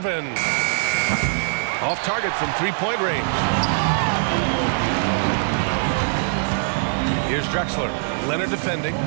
Off target from three-point range. Here's Drexler. Leonard defending.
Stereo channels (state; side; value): silent; left; digital silence